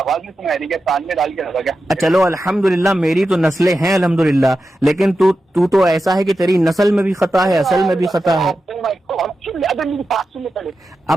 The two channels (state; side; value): normal; both; correlation 0.91